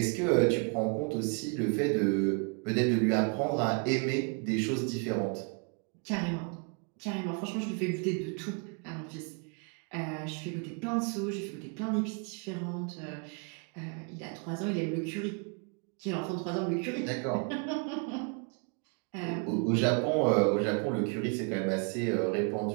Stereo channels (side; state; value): left; quieter; 37.4 dB